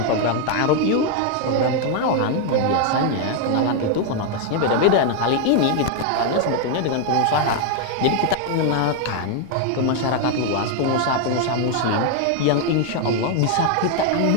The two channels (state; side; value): different; both; correlation 0.01